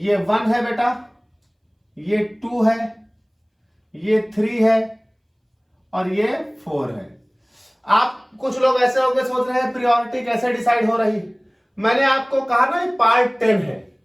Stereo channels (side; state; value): both; identical; correlation 1.00